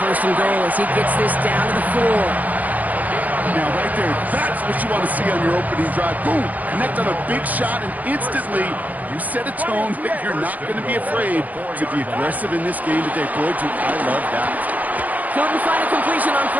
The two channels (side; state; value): left; late; 0.078 ms